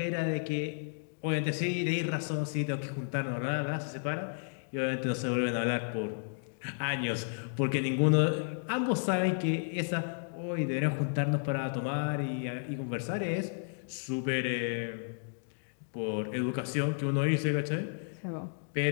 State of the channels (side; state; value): right; silent; digital silence